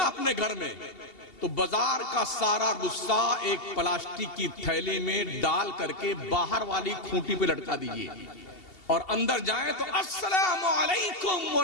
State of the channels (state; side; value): late; right; 2.7 ms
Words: अपने घर में, तो बाजार का सारा गुस्सा एक प्लास्टिक की थैली में डाल करके बाहर वाली खूंटी पे लटका दीजिए और अंदर जाएं तो अस्सलामु अलैकुम व